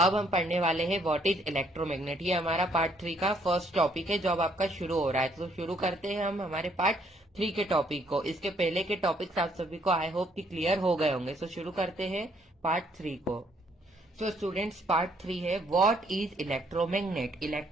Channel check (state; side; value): normal; both; correlation 0.67